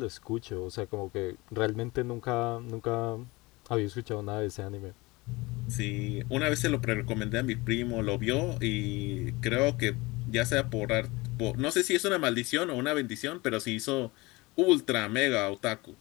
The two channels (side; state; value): right; quieter; 22.9 dB